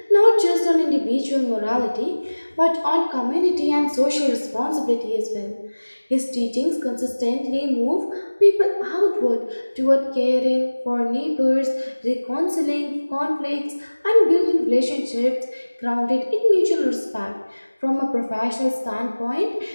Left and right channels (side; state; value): both; inverted; correlation -1.00